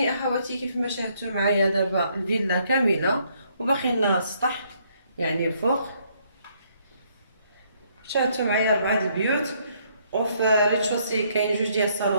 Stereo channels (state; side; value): inverted; both; correlation -0.69